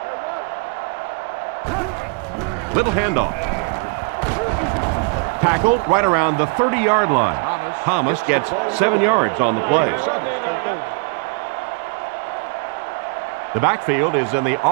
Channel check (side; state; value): left; quieter; 32.3 dB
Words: Little handoff. Tackled right around the 30-yard line. Thomas gets 7 yards on the play. The backfield is in the